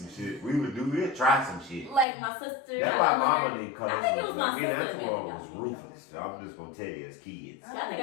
shit. We'd try some shit. Like my sister. That's why Mama didn't cut us. I think it was my Me and sister. Antoine that was got me. ruthless. So I'm just gonna tell you, as kids, I think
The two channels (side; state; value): right; drops out; at 2.1 s